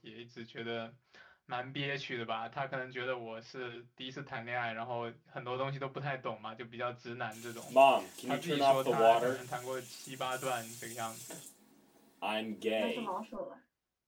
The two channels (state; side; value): identical; both; correlation 1.00